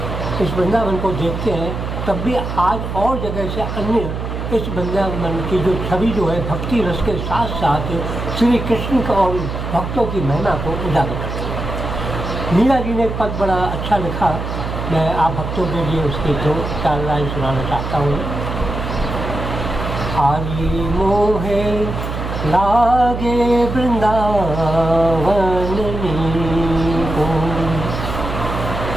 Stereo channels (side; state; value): right; noise; hum, 5 dB below the sound